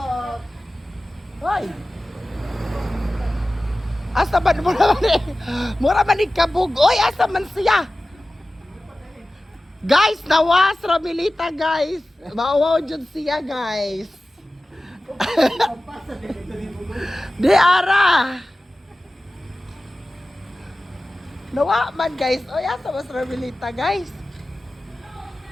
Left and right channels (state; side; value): normal; both; correlation 0.96